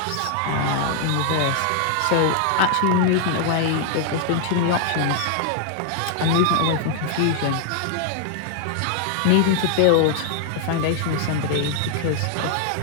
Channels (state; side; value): different; both; correlation 0.00